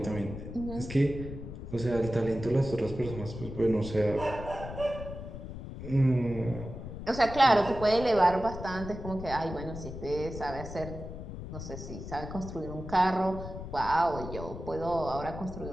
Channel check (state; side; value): noise; left; rumble, 9 dB below the sound